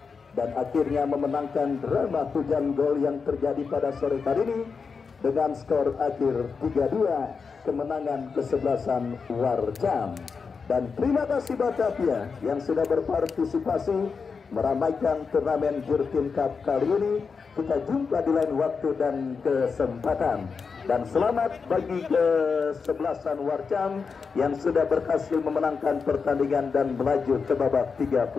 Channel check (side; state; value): right; quieter; 5.3 dB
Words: dan akhirnya memenangkan drama hujan gol yang terjadi pada sore hari ini dengan skor akhir 3-2, kemenangan kesebelasan Warcam. Dan terima kasih Batavia yang sudah berpartisipasi meramaikan turnamen Jurtin Cup kali ini. Kita jumpa di lain waktu dan kesempatan. Dan selamat bagi kesebelasan Warcam yang sudah berhasil memenangkan pertandingan dan melaju ke babak